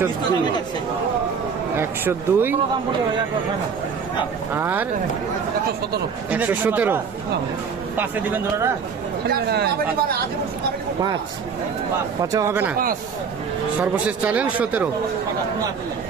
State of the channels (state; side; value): quieter; left; 6.0 dB